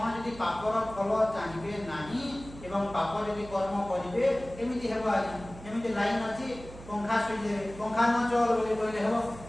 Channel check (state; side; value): noise; right; hum, 16 dB below the sound